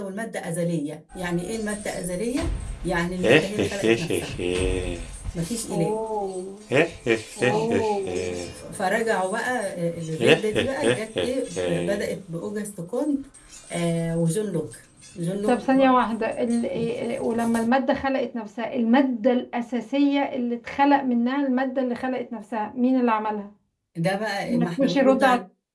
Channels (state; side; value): identical; both; correlation 1.00